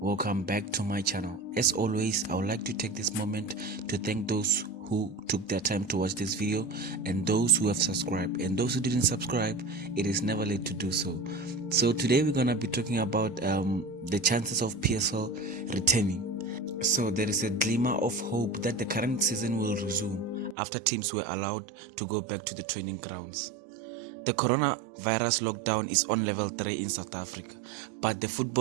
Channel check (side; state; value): left; drops out; at 20.6 s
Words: back to my channel. As always, I would like to take this moment to thank those who took their time to watch this video and those who have subscribed, and those who didn't subscribe, it is never late to do so. So today we're gonna be talking about the chances of PSL returning. So there is a glimmer of hope that the current season will resume after teams were allowed to go back to the training grounds. The coronavirus lockdown is on level 3 in South Africa, but the